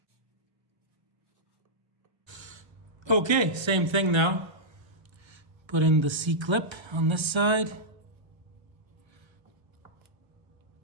Okay, same thing now. Put in the C-clip on this side.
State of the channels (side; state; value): left; late; 1.3 ms